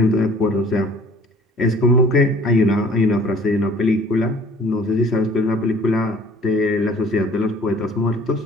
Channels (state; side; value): normal; both; correlation 0.52